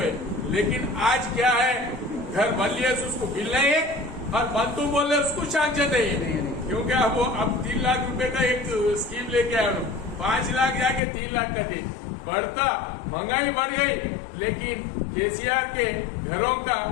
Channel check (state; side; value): drops out; right; at 11.0 s